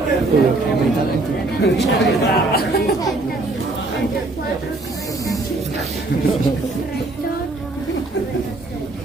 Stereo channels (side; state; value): left; quieter; 3.0 dB